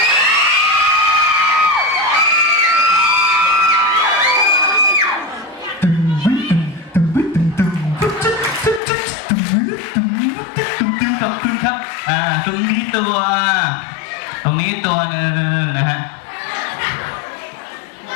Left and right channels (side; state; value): right; drops out; at 8.8 s